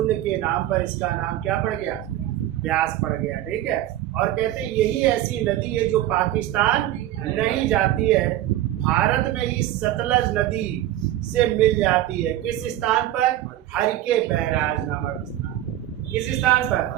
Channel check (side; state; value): left; quieter; 13.7 dB